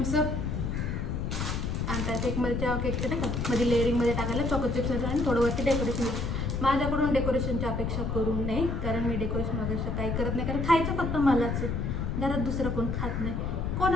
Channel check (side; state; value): left; noise; rumble, 1 dB below the sound